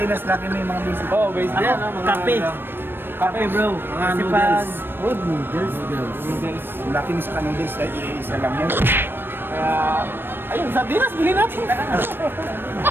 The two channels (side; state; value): left; late; 0.099 ms